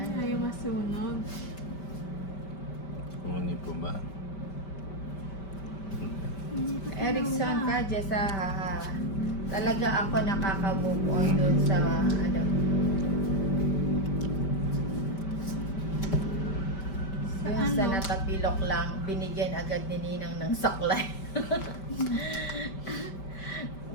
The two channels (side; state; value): right; late; 5.1 ms